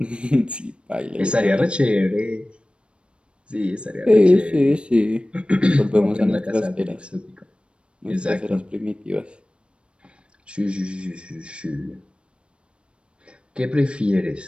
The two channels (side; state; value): left; late; 0.058 ms